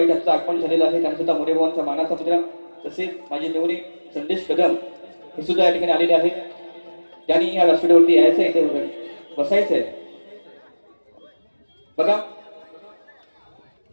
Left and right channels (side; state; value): both; inverted; correlation -1.00